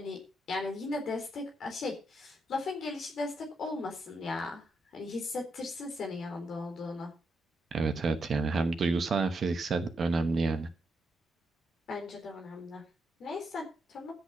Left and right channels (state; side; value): normal; both; correlation 0.81